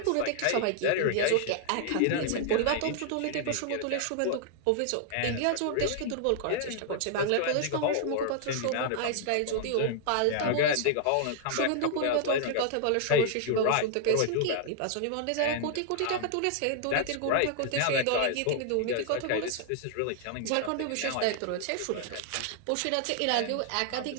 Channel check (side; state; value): both; different; correlation 0.00